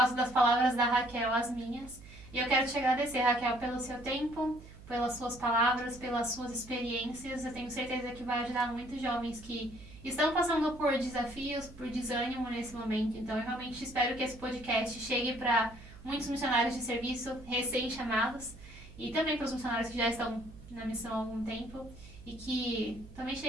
das palavras da Raquel as minhas. E eu quero te agradecer, Raquel, pelo seu tempo, pelas suas palavras, pelas suas experiências. Eu tenho certeza que vai ajudar muitos jovens que estão passando por desafios, por desânimo nesse momento. Então eu realmente espero que esse podcast chegue para muitos missionários de serviço recém-chamados e também para os missionários que já estão na missão há algum tempo e que também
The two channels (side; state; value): right; noise; hum, 18 dB below the sound